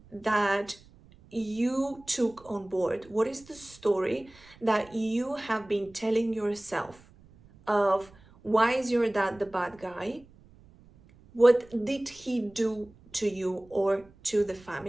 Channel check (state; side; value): noise; right; rumble, 26 dB below the sound